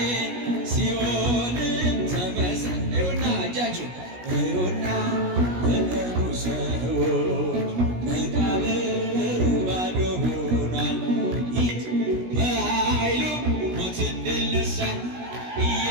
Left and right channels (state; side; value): late; left; 17 ms